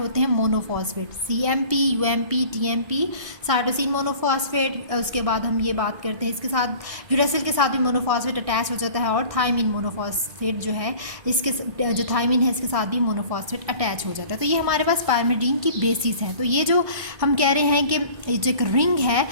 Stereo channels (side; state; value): left; late; 1.6 ms